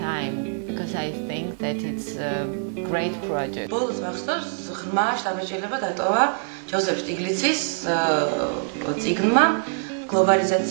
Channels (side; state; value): left; silent; digital silence